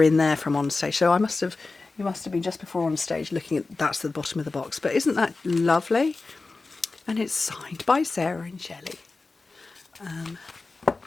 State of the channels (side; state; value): right; quieter; 3.7 dB